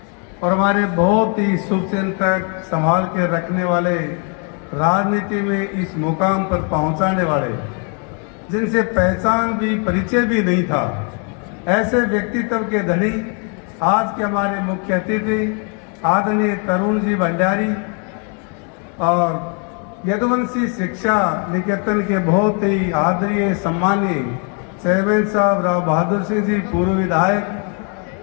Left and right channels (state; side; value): quieter; right; 38.5 dB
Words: और हमारे बहुत ही शुभचिंतक संभाल के रखने वाले, राजनीति में इस मुकाम पर पहुंचाने वाले, जिनसे पहचान भी परिचय भी नहीं था, ऐसे व्यक्तित्व के धनी आज के हमारे मुख्य अतिथि आदरणीय तरुण जी भंडारी और यदुवंशी शिक्षा निकेतन के बहुत ही आदरणीय सम्मानीय चेयरमैन साहब राव बहादुर सिंह जी, पूर्व